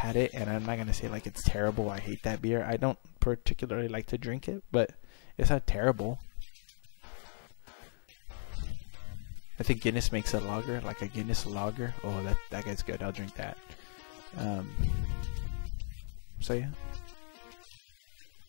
it, and I'm not gonna say like it's terrible. I hate that beer. I don't particularly like to drink it, but it's not terrible. I think Guinness makes a lager, like a Guinness lager. Oh, that guy's good. I'll drink that. So yeah.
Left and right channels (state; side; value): silent; right; 54 dB below the other